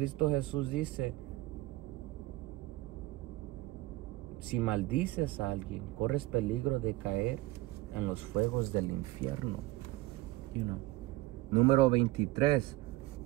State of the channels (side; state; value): left; quieter; 18.6 dB